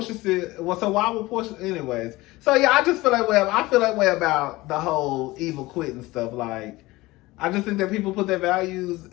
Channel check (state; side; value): quieter; right; 19.9 dB